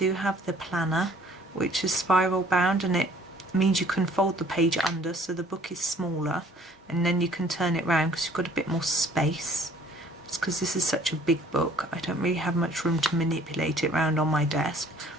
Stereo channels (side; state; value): both; normal; correlation 0.56